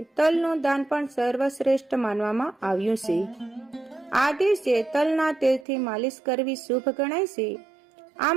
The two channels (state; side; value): drops out; left; at 5.7 s